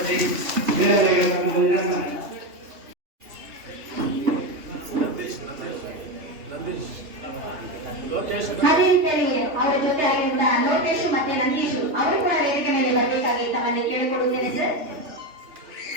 ಅದೇ ರೀತಿಯಲ್ಲಿ ಅವರ ಜೊತೆ ಆಗಿರುವ ಲೋಕೇಶ್ ಮತ್ತೆ ನಂದೀಶ್ ಅವರು ಕೂಡ ವೇದಿಕೆ ಮೇಲೆ ಬರಬೇಕಾಗಿ ತಮ್ಮಲ್ಲಿ ಕೇಳಿಕೊಡುತ್ತೇನೆ ಸರ್.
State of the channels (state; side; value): late; left; 3.1 ms